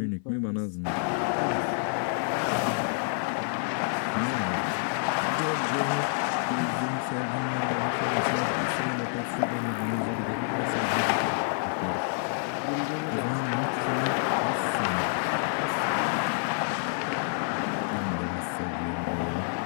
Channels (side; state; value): right; silent; 55 dB below the other